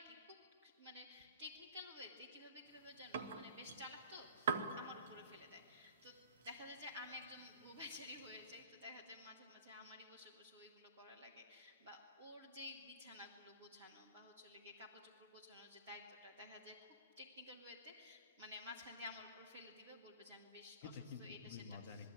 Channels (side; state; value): both; inverted; correlation -0.45